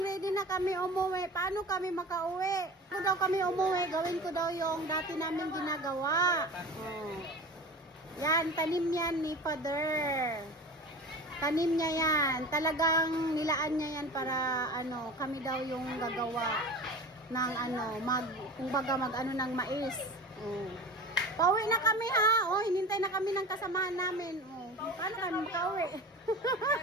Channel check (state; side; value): normal; both; correlation 0.35